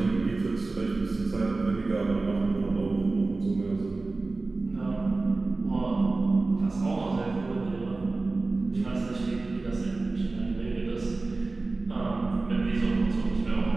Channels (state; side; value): quieter; left; 3.5 dB